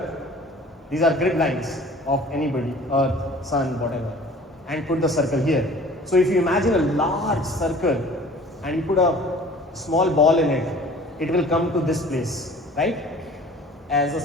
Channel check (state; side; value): normal; both; correlation 0.47